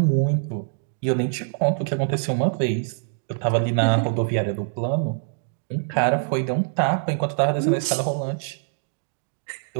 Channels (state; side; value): silent; left; digital silence